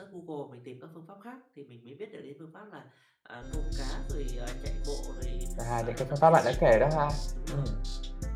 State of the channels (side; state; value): both; identical; correlation 1.00